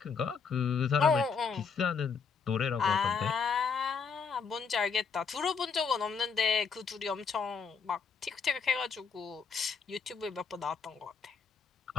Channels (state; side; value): quieter; right; 5.7 dB